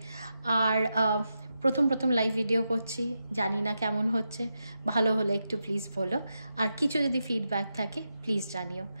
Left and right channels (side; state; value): both; inverted; correlation -0.87